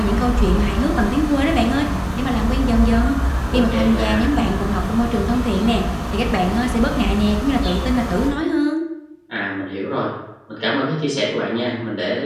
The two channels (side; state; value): both; identical; correlation 1.00